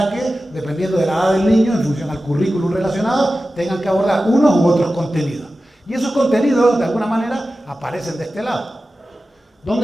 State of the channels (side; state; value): both; normal; correlation 0.94